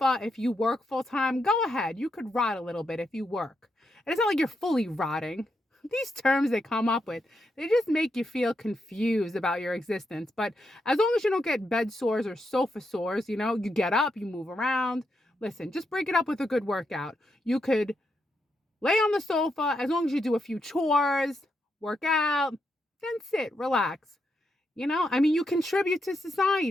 if you work full time, go ahead. You could rot a little bit if you work. And it's not like you're fully rotting. These terms they come up with, they just make you feel confused about your existence. But as long as you don't get bed sores or sofa sores, you get up, you move around. Listen, just break it up with a good workout. You could lay on the sofa as long as you do a few chores, work out, then sit, relax. You contribute to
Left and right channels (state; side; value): normal; both; correlation 0.82